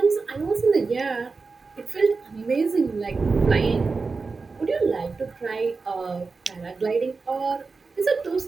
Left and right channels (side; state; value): left; quieter; 4.3 dB